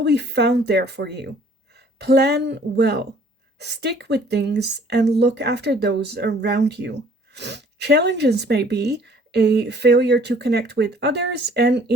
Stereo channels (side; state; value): both; normal; correlation 0.56